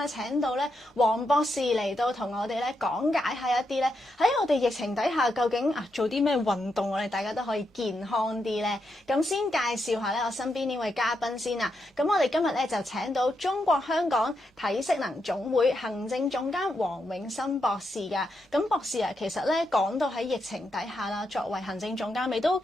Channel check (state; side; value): normal; both; correlation 0.83